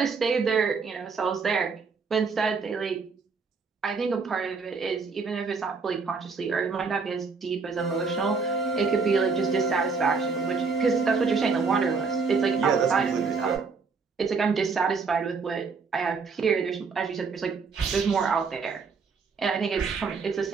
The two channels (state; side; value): quieter; left; 4.9 dB